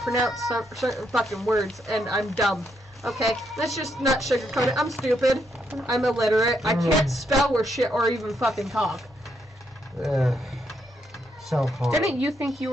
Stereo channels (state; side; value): normal; both; correlation 0.78